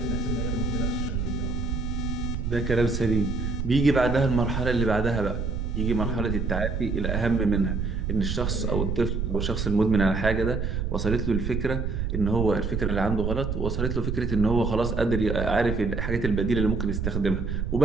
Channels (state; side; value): noise; right; rumble, 2 dB below the sound